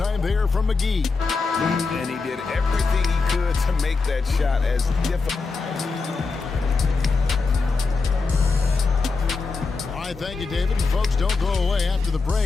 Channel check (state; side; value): quieter; right; 4.2 dB